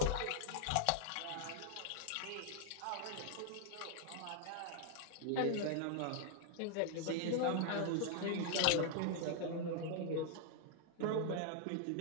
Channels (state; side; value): different; both; correlation 0.00